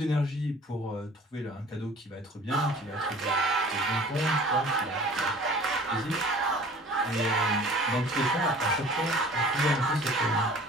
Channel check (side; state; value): both; normal; correlation 0.47